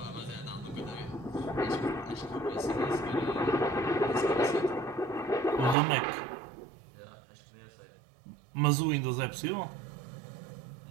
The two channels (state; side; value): drops out; left; at 5.8 s